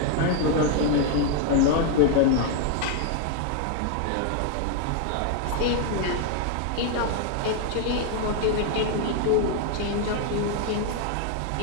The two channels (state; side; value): different; both; correlation 0.00